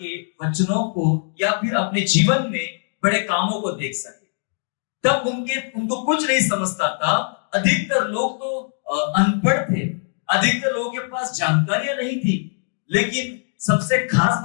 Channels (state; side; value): silent; right; 64 dB below the other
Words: वचनों को या फिर अपने जीवन में बड़े कामों को देख सके, तब उनको कुछ नहीं समझता था। अधिकतर लोग तो अनपढ़ थे, अधिकतर लोगों के पास जानकारियां नहीं थी, लेकिन सबसे खास